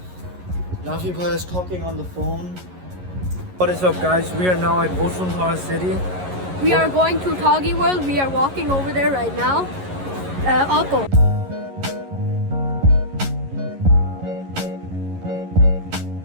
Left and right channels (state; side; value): late; left; 11 ms